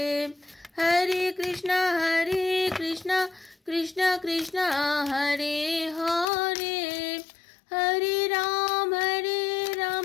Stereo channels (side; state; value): right; drops out; at 6.2 s